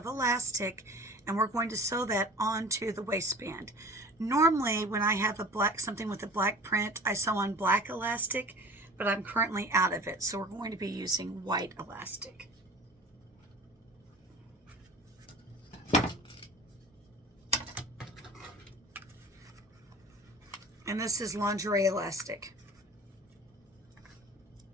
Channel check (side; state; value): both; normal; correlation 0.42